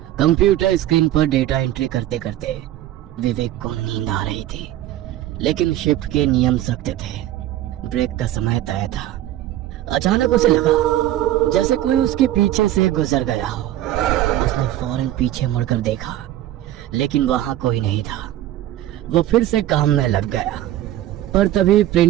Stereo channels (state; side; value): quieter; left; 13.5 dB